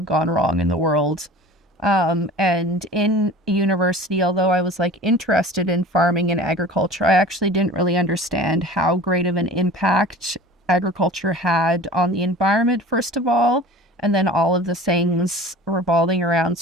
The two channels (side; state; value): both; normal; correlation 0.40